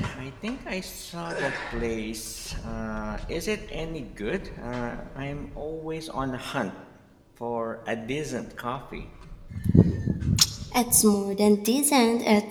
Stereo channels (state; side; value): identical; both; correlation 1.00